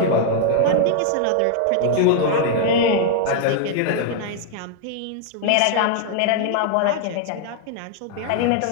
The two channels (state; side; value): different; both; correlation -0.01